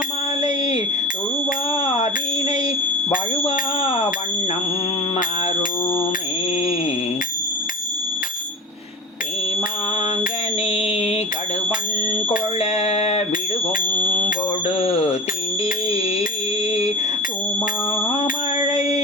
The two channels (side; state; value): both; normal; correlation 0.30